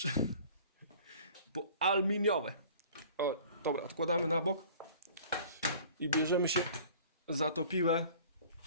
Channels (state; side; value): inverted; both; correlation -0.48